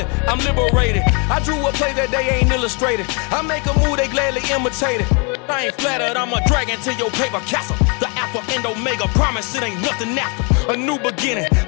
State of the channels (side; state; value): right; quieter; 34.1 dB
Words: I'm liberated. I drew a play that they ain't illustrated. I make a move, they gladly imitate it. I ain't flattered, I'm a dragon to your paper castle. The Alpha and Omega, promise it ain't nothing after. A new beginning.